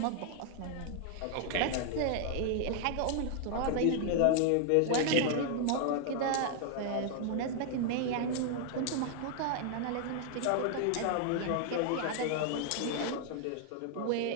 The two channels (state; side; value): different; both; correlation 0.00